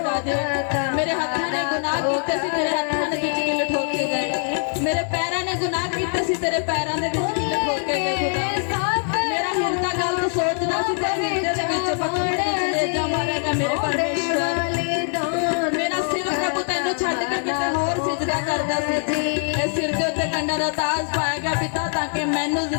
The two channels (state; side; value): silent; right; 56 dB below the other